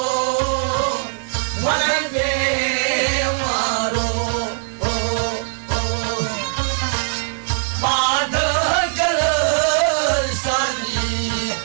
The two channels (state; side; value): silent; left; 65 dB below the other